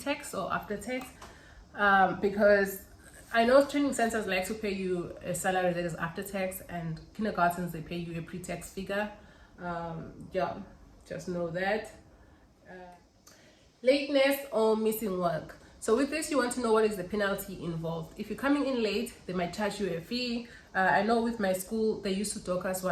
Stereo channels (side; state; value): both; identical; correlation 1.00